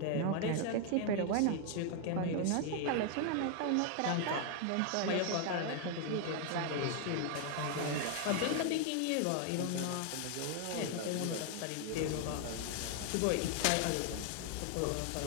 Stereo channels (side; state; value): both; different; correlation 0.00